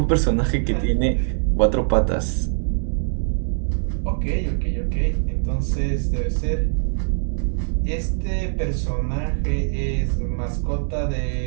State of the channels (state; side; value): silent; left; digital silence